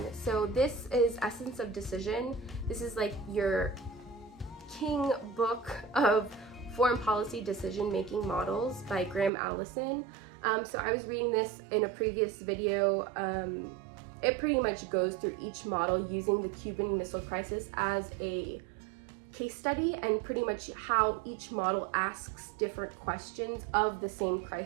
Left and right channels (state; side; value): drops out; left; at 9.3 s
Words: So this is Essence of Decision. This is like your king book of foreign policy decision-making models by Graham Allison. So I was reading this in a previous video. It pretty much goes through each model using the Cuban Missile Crisis as a case study, and pretty much how each model asks different questions of the same